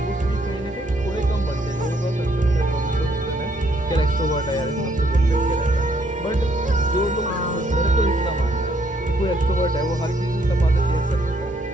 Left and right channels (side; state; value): both; normal; correlation 0.69